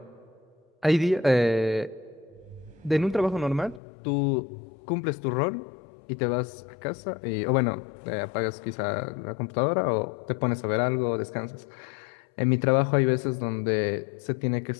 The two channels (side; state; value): right; drops out; at 3.8 s